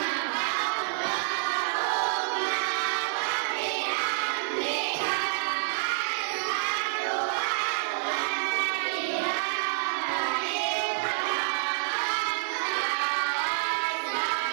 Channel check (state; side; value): silent; left; 59 dB below the other